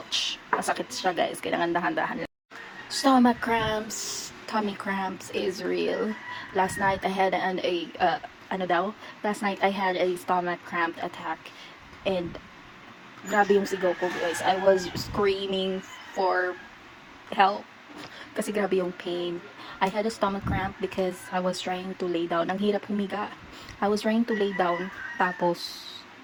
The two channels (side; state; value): both; identical; correlation 1.00